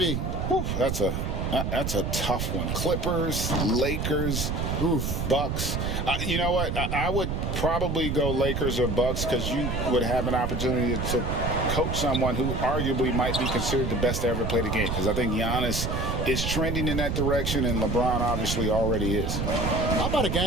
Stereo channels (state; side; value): noise; right; rumble, 1 dB below the sound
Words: Whew, that's a tough one. Clippers, Lakers, Bucks. You know what? I would probably go Lakers or Bucks, because you would have an opportunity to coach someone who arguably might be considered the best to ever play the game, because I think Giannis is trending in that direction, and LeBron obviously already is. How about a